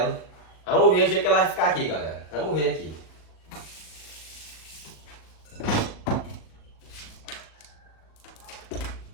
Vamos ver o jeito que ela vai ficar aqui, galera. Vamos ver aqui.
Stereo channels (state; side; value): late; right; 38 ms